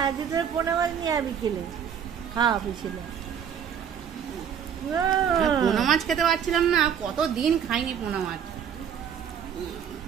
আজ তোর পোনা মাছ নিয়ে আবি, খেলে খাওয়া ছিল। পোনা মাছ খেতে পারছিলাম না, কতদিন খাইনি পোনা মাছ।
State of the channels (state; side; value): quieter; left; 8.2 dB